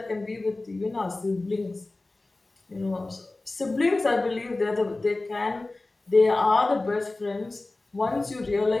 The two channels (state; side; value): quieter; right; 3.1 dB